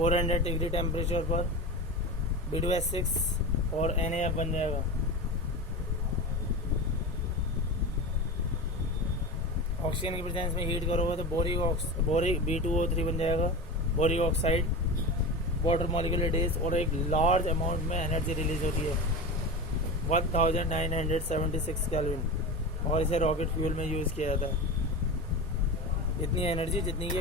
डिग्री टेम्परेचर पर B2S6 और NaF बन जाएगा. ऑक्सीजन की प्रेजेंस में हीट करोगे तो बोरिक B2O3 बन जाएगा, boric oxide. Water molecular days और एक लार्ज अमाउंट में एनर्जी रिलीज होती है 1976 केल्विन, और इसे रॉकेट फ्यूल में यूज़ किया जाता है. इतनी एनर्जी जितनी कि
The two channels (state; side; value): normal; both; correlation 0.26